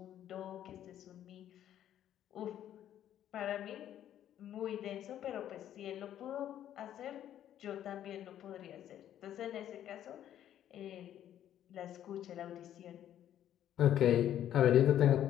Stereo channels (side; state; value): right; quieter; 11.1 dB